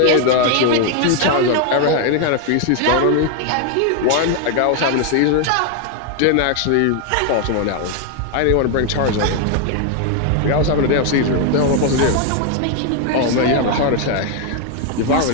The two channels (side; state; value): both; different; correlation 0.01